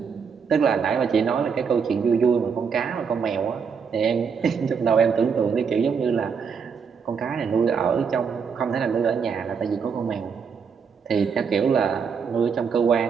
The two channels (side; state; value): left; quieter; 6.2 dB